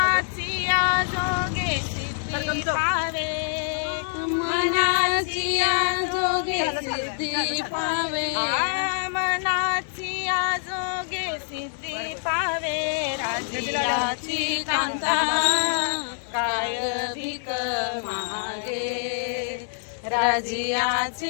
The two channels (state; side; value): silent; right; digital silence